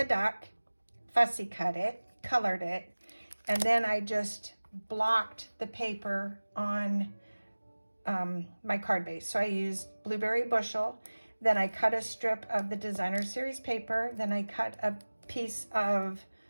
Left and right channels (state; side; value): inverted; both; correlation -1.00